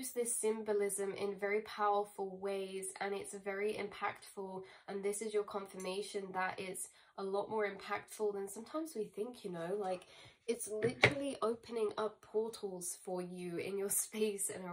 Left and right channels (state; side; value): identical; both; correlation 1.00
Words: this symbolism in very powerful ways, and it's very impactful. And this is your confirmation that it's a lot more impactful than sometimes we think, you know, like it's literally opening up portals for you in your space and